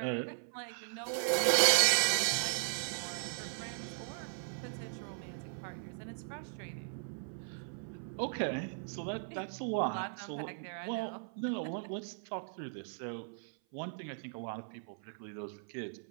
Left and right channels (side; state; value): left; silent; 53 dB below the other